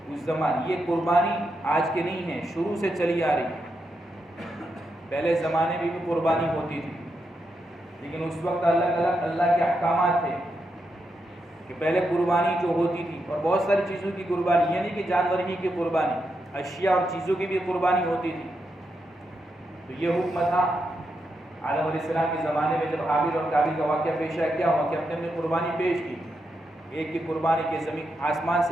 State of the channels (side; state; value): both; normal; correlation 0.84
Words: اس زمانے یہ قربانی آج کے نہیں ہے، شروع سے چلی آ رہی. پہلے زمانے میں بھی قربانی ہوتی تھی لیکن اس وقت اللہ کے احکامات تھے کہ پہلے قربانی جو ہوتی تھی اور بہت ساری چیزوں کی قربانی، یعنی کہ جانور ہی کی قربانی، اشیاء اور چیزوں کی بھی قربانی ہوتی تھی. تو یہ حکم تھا آدم علیہ السلام کے زمانے میں جب حابیل اور قابیل کا واقعہ پیش آیا، کیا ہوا کہ اپنے اپنے قربانی پیش کی، ایک کی قربانی کے زمین آسمان